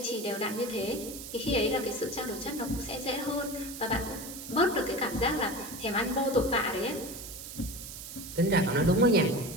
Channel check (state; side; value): noise; right; hiss, 11 dB below the sound